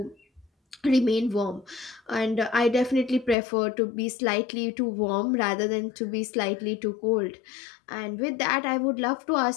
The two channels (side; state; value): right; drops out; at 3.4 s